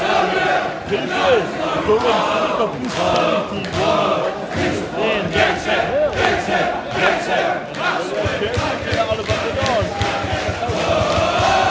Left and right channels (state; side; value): identical; both; correlation 1.00